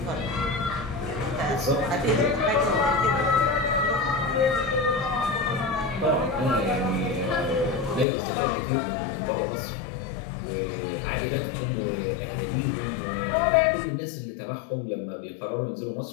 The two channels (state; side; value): drops out; right; at 8.1 s